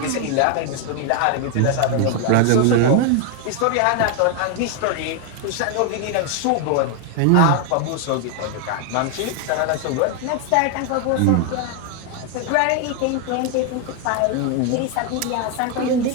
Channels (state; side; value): different; both; correlation 0.01